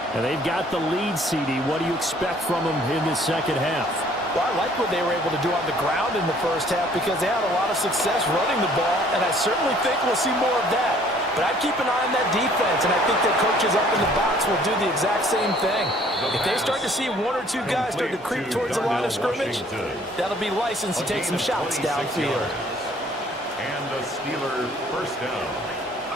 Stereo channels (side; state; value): both; normal; correlation 0.58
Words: And they've got the lead, CD. What do you expect from them in the 2nd half? Well, I like what they were able to do on the ground in the 1st half because they had a lot of success running the ball, and I certainly think we'll see more of that. But I'd keep an eye on that defense, and I think their coaches up in the box will do the exact same thing. If they start to see 1 or 2 guys start to creep towards the line of scrimmage, that'll be licensed to take some shots downfield. And the Steelers 1st down.